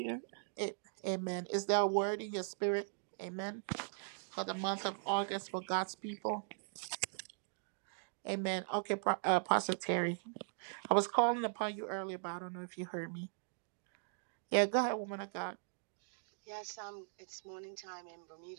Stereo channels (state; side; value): silent; left; digital silence